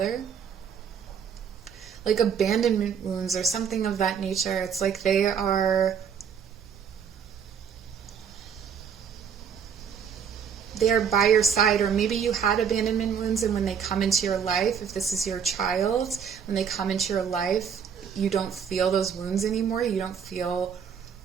like abandonment wounds or something of that nature. It's like they are by your side, or maybe you had abandonment wounds, and when they come into your life, if this is your child, when they come into your life, you don't feel those wounds anymore. You don't feel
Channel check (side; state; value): left; quieter; 7.2 dB